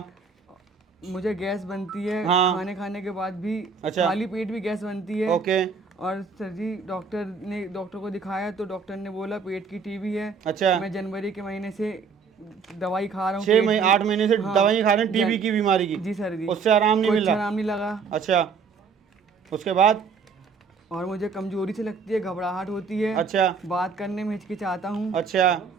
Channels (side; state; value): left; quieter; 5.3 dB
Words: मुझे गैस बनती है, हाँ। खाने के बाद भी। अच्छा। खाली पेट भी गैस बनती है। ओके। और सर जी डॉक्टर को दिखाया तो डॉक्टर ने बोला पेट की टीबी है। अच्छा। मैं जनवरी के महीने से दवाई खा रहा हूँ 8 महीने से हाँ, दवाई खा रहे हैं टीबी की बीमारी की? जी सर जी। उससे आराम नहीं मिल कुछ रहा? आराम नहीं लगा। अच्छा, उसके बाद? और मुझे कमजोरी से लगती है, घबराहट होती है। अच्छा। बात करने में हिचकिचाता हूँ। अच्छा।